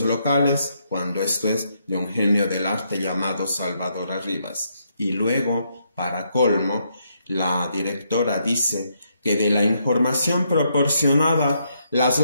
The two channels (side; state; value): both; inverted; correlation -0.76